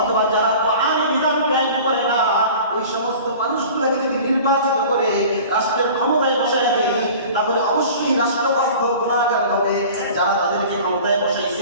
যারা কোরআনের বিধান কায়েম করে না, ওই সমস্ত মানুষগুলোকে যদি নির্বাচিত করে রাষ্ট্রের ক্ষমতায় বসায় দেয়, তাহলে অবশ্যই রাষ্ট্রপক্ষ গুনাহগার হবে। যারা তাদেরকে ক্ষমতায়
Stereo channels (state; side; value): inverted; both; correlation -0.42